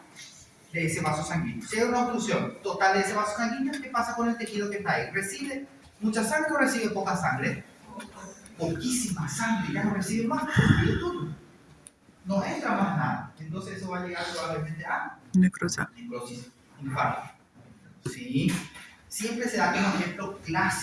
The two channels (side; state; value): both; identical; correlation 1.00